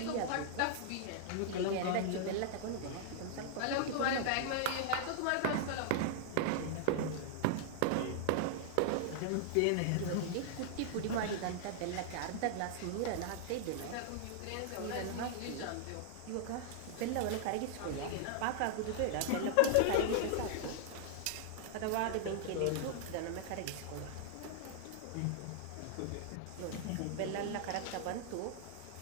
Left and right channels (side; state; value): both; different; correlation -0.01